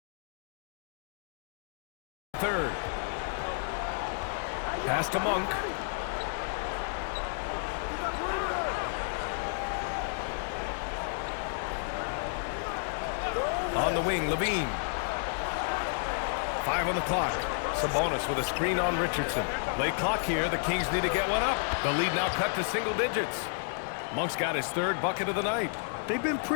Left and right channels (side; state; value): right; silent; digital silence